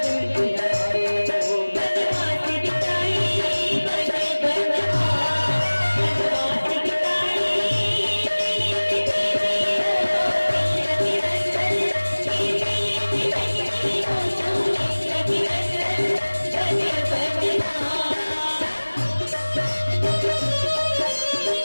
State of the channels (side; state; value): both; inverted; correlation -1.00